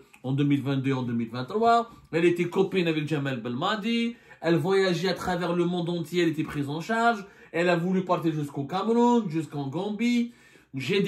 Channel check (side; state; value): both; identical; correlation 1.00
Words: en 2022 et en 2023. Elle était copine avec Jamel Belmadi. Elle voyageait à travers le monde entier. Elle était prise en charge. Elle a voulu partir jusqu'au Cameroun, jusqu'en Gambie. J'ai